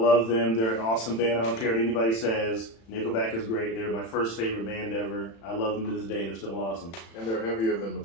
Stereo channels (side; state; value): right; late; 36 ms